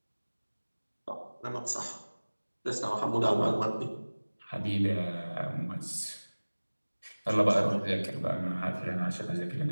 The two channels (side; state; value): both; inverted; correlation -1.00